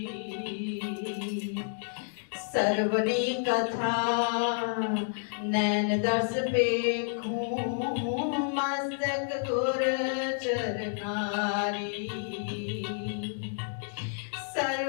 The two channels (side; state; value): right; silent; digital silence